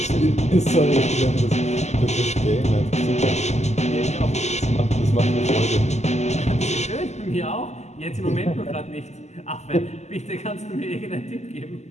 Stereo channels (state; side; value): late; right; 0.33 ms